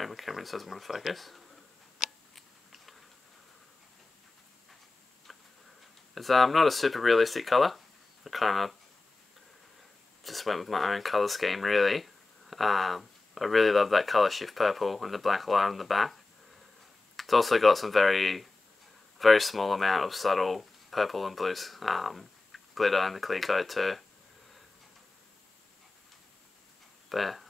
my camera doesn't want to focus. It's not a super realistic colour. I kind of just went with my own colour scheme really. I really love that colour shift purple and the black line on the back. It's also got some very small amount of subtle purple and blue glitter in the clear coat too. But yeah,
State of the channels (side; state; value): right; quieter; 3.4 dB